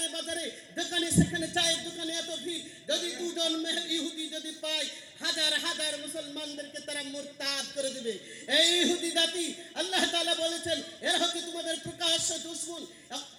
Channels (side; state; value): both; identical; correlation 1.00